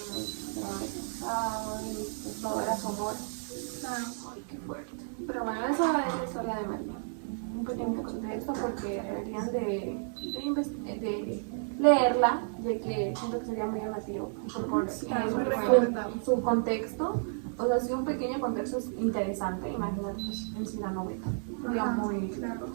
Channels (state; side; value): silent; left; 56 dB below the other